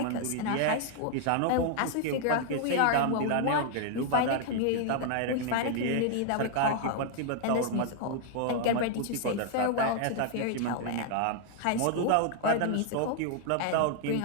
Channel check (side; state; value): both; different; correlation 0.00